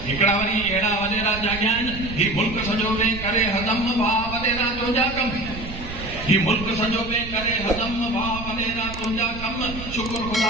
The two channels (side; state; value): right; noise; rumble, 11 dB below the sound